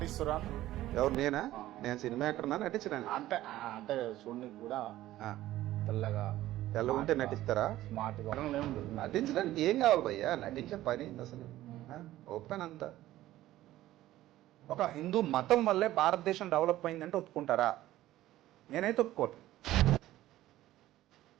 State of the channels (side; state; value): left; quieter; 15.0 dB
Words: ఎవరు నేనా? నేను సినిమా యాక్టర్నా నటించడా? అంటే అంటే చూడడానికి కూడా తెల్లగా తెల్ల ఉంటే నటిస్తారా? స్మార్ట్ గా నటించడానికి ఏం కావాలి భయ్యా? నటించే పని అసలు ఓపెన్ అంతా. ఒక హిందూ మతం వల్లే భారతదేశం డెవలప్ అయిందంటే ఒప్పుకుంటారా? నేనైతే ఒప్పుకోను.